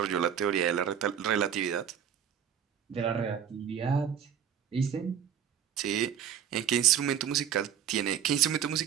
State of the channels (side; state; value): left; quieter; 8.7 dB